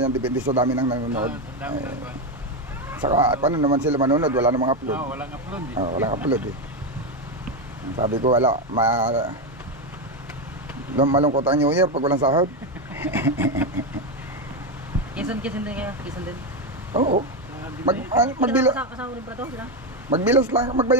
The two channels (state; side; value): normal; both; correlation 0.09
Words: depende sa dami ng nanonood. Saka paano naman sila manonood, wala namang upload. Walang upload eh. Walang upload eh. Sabi ko wala, malungkot ang New Year pag walang sahod. Kisan din kaya, kisan din. Oo. Magbilas. Kasama rin pa to sila. Magbilas lang,